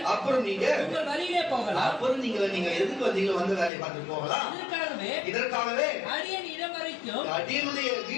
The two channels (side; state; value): right; drops out; at 3.7 s